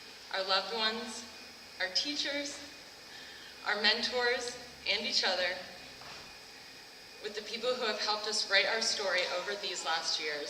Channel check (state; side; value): identical; both; correlation 1.00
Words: our loved ones, our teachers, our mentors, and each other, with the people who have helped us write our story over these last